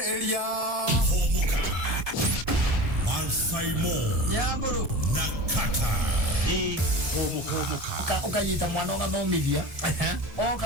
Mansaimo Yamburu na Kattaj. ukanyita mwana ugathomithia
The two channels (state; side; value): late; left; 1.8 ms